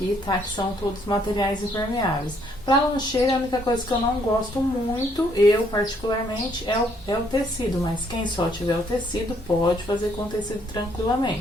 tá? Que são todos materiais impermeáveis. Para lancheira, a única coisa que eu não gosto muito, eu particularmente, é o tecido, mas quem só tiver o tecido pode fazer com tecido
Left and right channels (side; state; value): both; normal; correlation 0.68